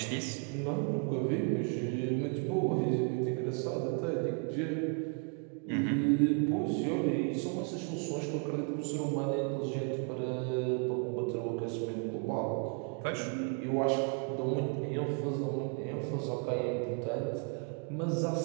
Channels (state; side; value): quieter; left; 37.2 dB